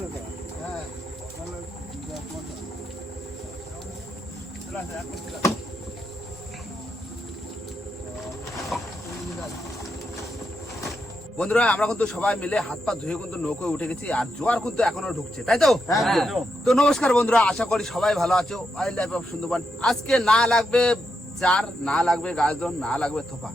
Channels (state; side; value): normal; both; correlation 0.83